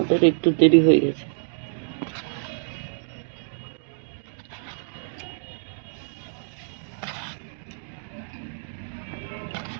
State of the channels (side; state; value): left; silent; digital silence